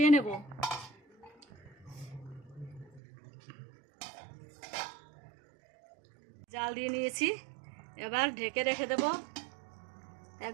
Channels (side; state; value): left; drops out; at 3.0 s